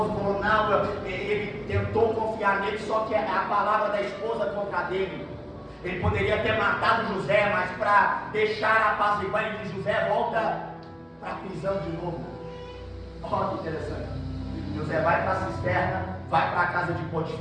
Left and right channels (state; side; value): identical; both; correlation 1.00